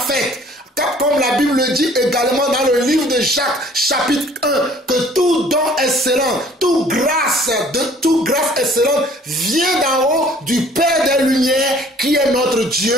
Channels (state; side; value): normal; both; correlation 0.55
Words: comme la Bible le dit également dans le livre de Jacques, chapitre 1, que tout don excellent, toute grâce excellente vient d'en haut du Père des Lumières, qui est notre Dieu,